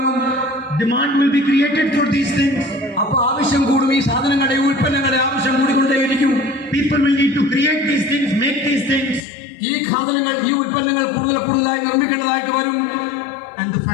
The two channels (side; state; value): right; drops out; at 9.2 s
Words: Demand will be created for these things. അപ്പൊ ആവശ്യം കൂടും. ഈ സാധനങ്ങളുടെ, ഉൽപ്പന്നങ്ങളുടെ ആവശ്യം കൂടിക്കൊണ്ടേയിരിക്കും. People will need to create these things, make these things. ഈ സാധനങ്ങൾ, ഈ ഉൽപ്പന്നങ്ങൾ കൂടുതലായി നിർമ്മിക്കേണ്ടതായിട്ട് വരും. And the